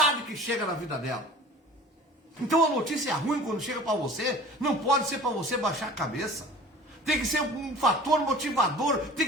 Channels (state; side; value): normal; both; correlation 0.43